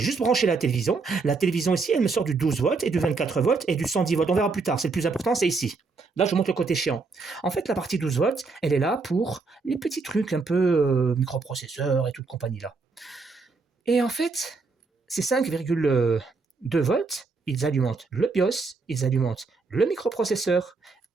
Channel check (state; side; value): quieter; left; 4.2 dB